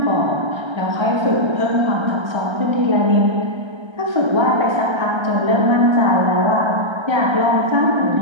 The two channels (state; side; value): late; left; 1.3 ms